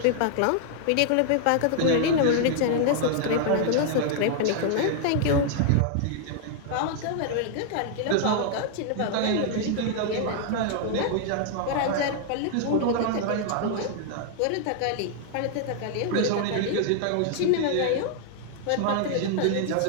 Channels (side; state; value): both; different; correlation 0.00